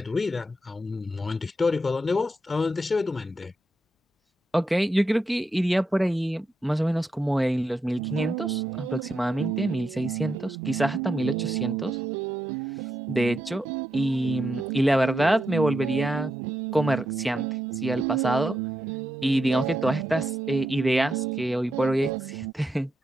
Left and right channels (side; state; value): both; normal; correlation 0.82